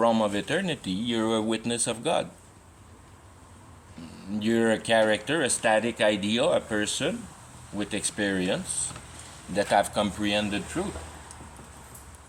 of eternity. You're a witness of God. You're a character, a static idea, a person with experience that have comprehended truth.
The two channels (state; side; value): identical; both; correlation 1.00